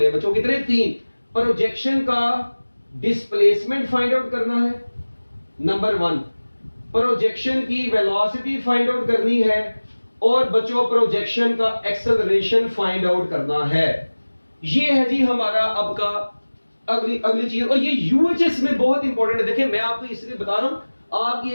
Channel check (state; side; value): inverted; both; correlation -1.00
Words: हैं बच्चों। कितने? 3। प्रोजेक्शन का डिस्प्लेसमेंट फाइंड आउट करना है, नंबर 1। प्रोजेक्शन की वेलोसिटी फाइंड आउट करनी है, और बच्चों प्रोजेक्शन का एक्सेलरेशन फाइंड आउट करना है। ये है जी हमारा अब का अगली चीज। और ये यूएचएस में बहुत इंपॉर्टेंट है। देखिए मैं आपको इसलिए बता रहा हूं, आपकी